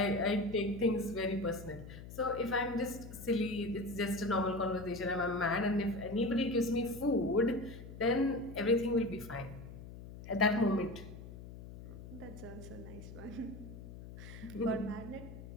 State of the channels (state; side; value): noise; left; hum, 13 dB below the sound